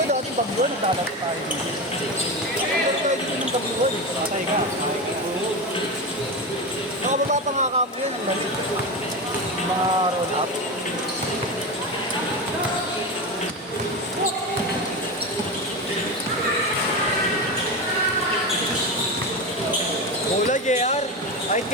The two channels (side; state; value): both; normal; correlation 0.20